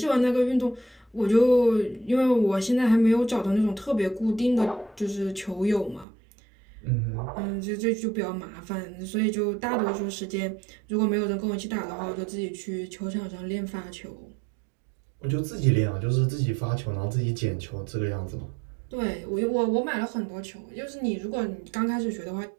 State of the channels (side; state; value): left; drops out; at 6.1 s